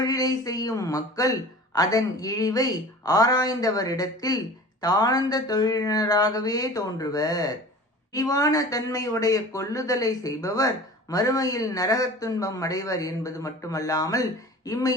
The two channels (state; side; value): normal; both; correlation 0.40